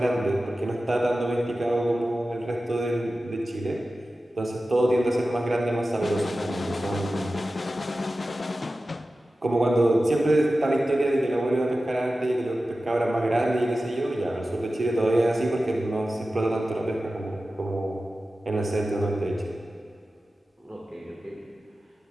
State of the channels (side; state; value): both; normal; correlation 0.94